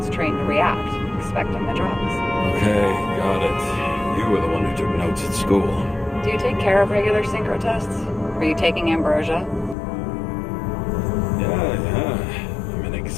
trained to react, expecting the drugs. Okay, got it. You were the one who took notes at school. Do you take care of regular synchro tests? Are you taking ambrosia? Yeah. I'm an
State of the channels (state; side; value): drops out; right; at 9.8 s